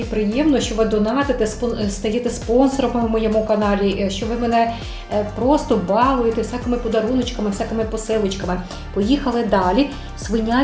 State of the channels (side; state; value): both; identical; correlation 1.00